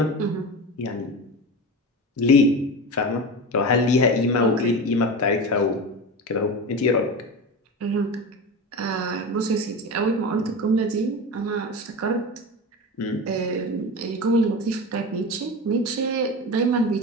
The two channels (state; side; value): normal; both; correlation 0.26